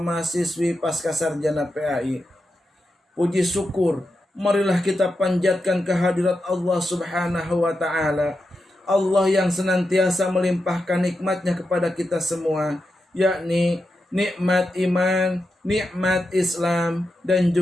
pasca sarjana PAI. Puji syukur, marilah kita panjatkan kehadirat Allah Subhanahu wa Ta'ala. Allah yang senantiasa melimpahkan nikmatnya kepada kita semua, yakni nikmat iman, nikmat Islam, dan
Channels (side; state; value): both; normal; correlation 0.88